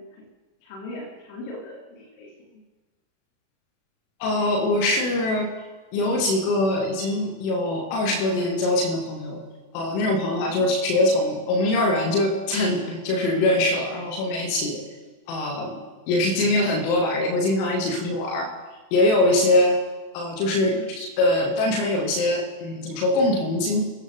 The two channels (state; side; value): late; right; 36 ms